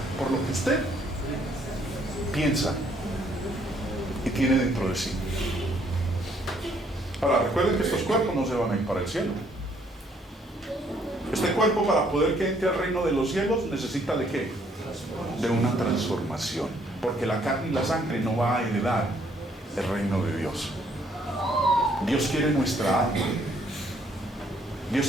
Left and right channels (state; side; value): normal; both; correlation 0.66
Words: por lo que usted piensa y tiene dentro de sí. Ahora, recuerden que estos cuerpos no se van a ir para el cielo. Este cuerpo, para poder que entre al reino de los cielos, necesita ¿de qué? De una transformación, porque la carne y la sangre no va a heredar el reino de Dios. Dios quiere nuestra alma, Dios